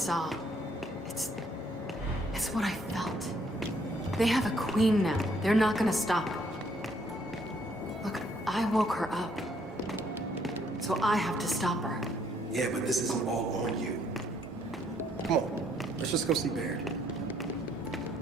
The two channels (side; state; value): both; normal; correlation 0.68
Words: It's what I felt. They have a queen now. They're not gonna stop. Look, I woke her up. So I have to stop her. Yeah, but this isn't all on you. Come on, let's just go see Baird.